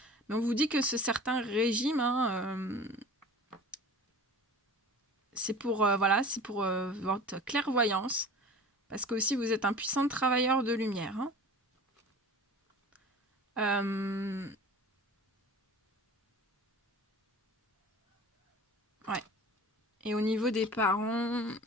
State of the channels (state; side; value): normal; both; correlation 0.40